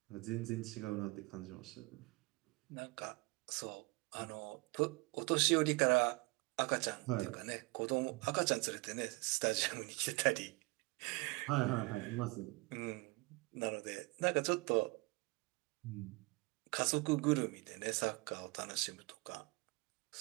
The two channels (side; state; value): left; quieter; 25.7 dB